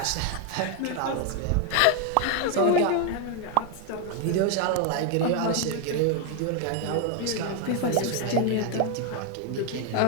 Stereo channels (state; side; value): different; both; correlation 0.01